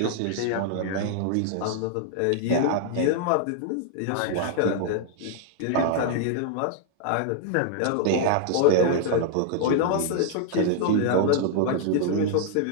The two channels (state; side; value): different; both; correlation -0.01